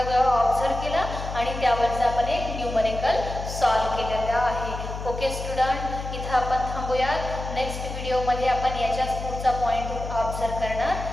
ऑब्झर्व केला आणि त्यावरचा आपण एक न्यूमरिकल सॉल्व केलेला आहे. ओके स्टुडंट, इथं आपण थांबूया. नेक्स्ट व्हिडिओमध्ये आपण याच्याच पुढचा पॉईंट ऑब्झर्व करणार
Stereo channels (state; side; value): noise; left; hum, 7 dB below the sound